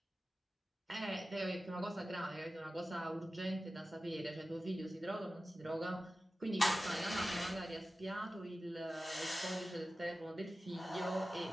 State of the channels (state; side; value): normal; both; correlation 0.95